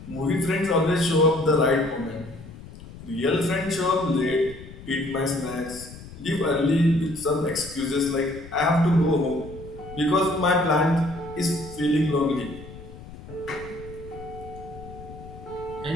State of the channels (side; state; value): left; noise; rumble, 16 dB below the sound